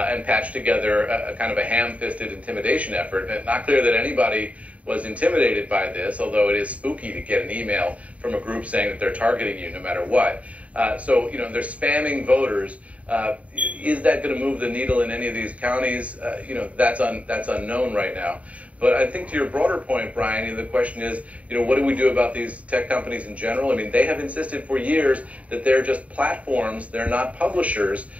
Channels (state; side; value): late; left; 0.067 ms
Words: patched together a kind of a ham-fisted intimidation effort. And not clear that anybody was intimidated by this, although it is spooky to get an email from a group saying that they're targeting you no matter what. So, they're spamming voters. Is that going to move the needle in any of these counties? That's unknown right now. But I think to your broader point, Brian, the question is, what do we do about these tech companies in general? I mean, they have insisted for years that they're just platforms, they're not publishers,